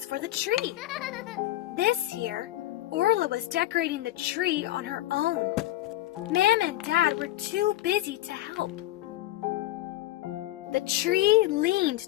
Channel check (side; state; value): right; quieter; 15.8 dB